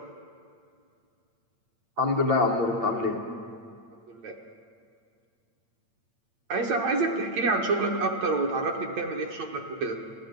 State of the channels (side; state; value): left; late; 8.8 ms